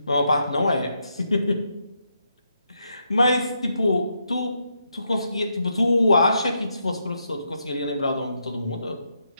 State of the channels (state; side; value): inverted; both; correlation -0.80